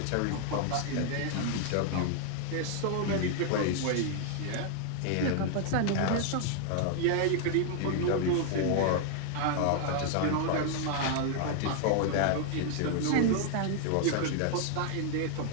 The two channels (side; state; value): both; different; correlation 0.00